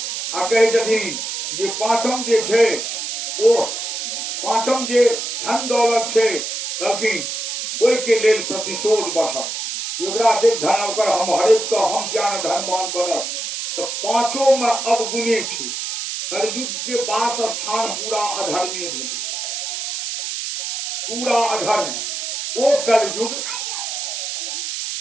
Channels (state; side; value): noise; right; hiss, 4 dB below the sound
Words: आ कहे छथिन जे पांचम जे छै ओ पांचम जे धन दौलत छै कहलखिन ओहि के लेल प्रतिशोध बढ़त। योगरा से धन ओकर हम हरेक के हम ज्ञान धनवान बनब। तो पांचों में अवगुणे छै। कलयुग के वास स्थान पूरा अधर्मी भेल, पूरा अधर्म। वो